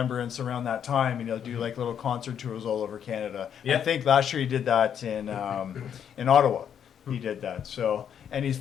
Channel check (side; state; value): right; quieter; 8.6 dB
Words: around that time, and he'll do like little concert tours all over Canada. Yeah. I think last year he did that in Ottawa. He did that. So, and he's